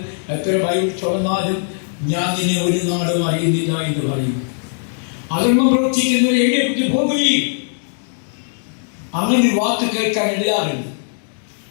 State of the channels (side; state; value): right; silent; digital silence